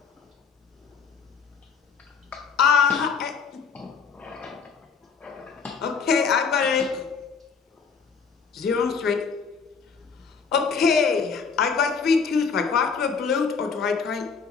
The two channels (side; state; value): right; quieter; 5.7 dB